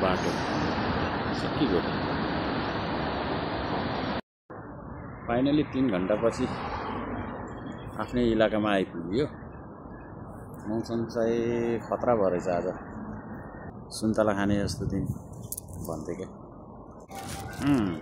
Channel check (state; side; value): identical; both; correlation 1.00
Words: बाटो, सकिगयो। फाइनली 3 घन्टापछि आफ्नै इलाकामा आइपुग्यो। मौसम चाहिँ खतरा भयो रहेछ आज। सुन्तला खाने जस्तो दिन भन्थ्यो क्या।